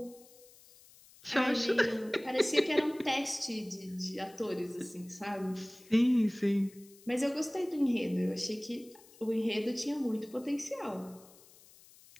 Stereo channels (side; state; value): left; noise; hiss, 24 dB below the sound